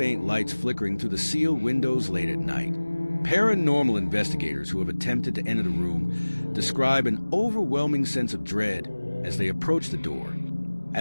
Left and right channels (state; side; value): inverted; both; correlation -1.00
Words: lights flickering through the sealed windows late at night. Paranormal investigators who have attempted to enter the room describe an overwhelming sense of dread as they approach the door,